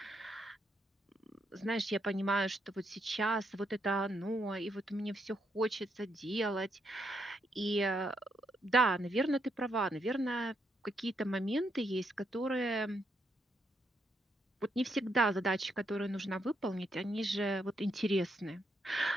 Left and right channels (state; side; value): normal; both; correlation 0.77